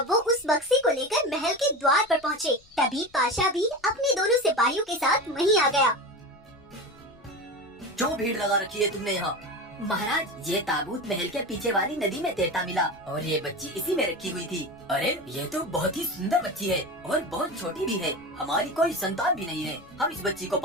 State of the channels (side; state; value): left; noise; rumble, 28 dB below the sound